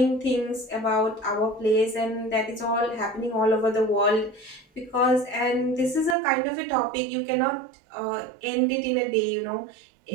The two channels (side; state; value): left; drops out; at 6.2 s